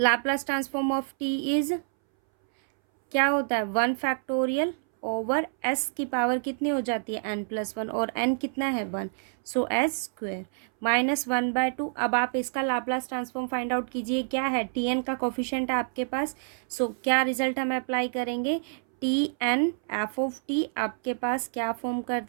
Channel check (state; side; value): silent; left; 60 dB below the other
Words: transform of T is क्या होता है, 1 फैक्टोरियल ओवर एस की पावर कितनी हो जाती है n+1, और n कितना है 1, सो एस स्क्वेयर माइनस 1/2। अब आप इसका लाप्लास ट्रांसफॉर्म फाइंड आउट कीजिए, क्या है, टी एन का कोफिशिएंट है आपके पास, सो क्या रिजल्ट हम अप्लाई करेंगे, T N F of T आपके पास क्या फॉर्म